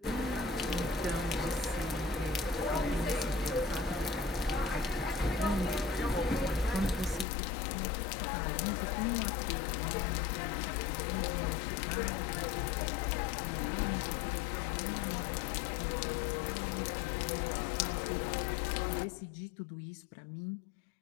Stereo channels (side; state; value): right; drops out; at 7.2 s